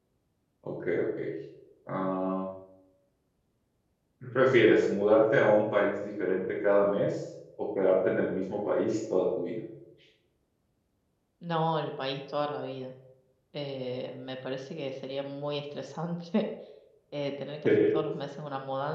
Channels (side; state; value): both; identical; correlation 1.00